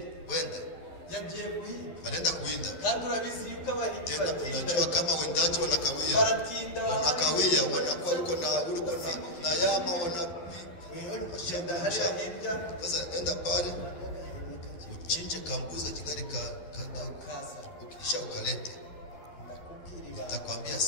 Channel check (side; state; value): right; late; 12 ms